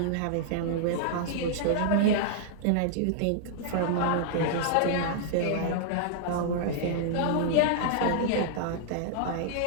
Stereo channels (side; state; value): both; different; correlation -0.01